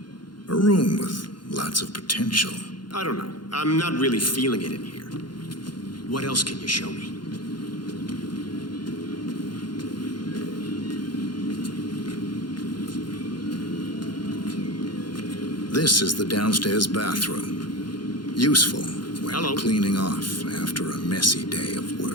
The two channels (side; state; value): right; late; 0.71 ms